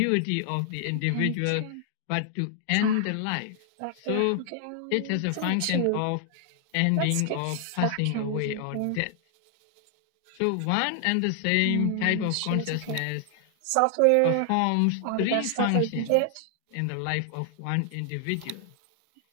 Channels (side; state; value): both; different; correlation 0.00